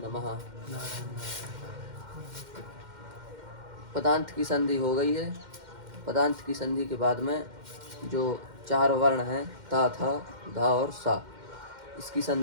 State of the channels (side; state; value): left; late; 2.1 ms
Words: पदांत की संधि हो गई है। पदांत की संधि के बाद में जो चार वर्ण हैं ता, था, धा और सा, इसकी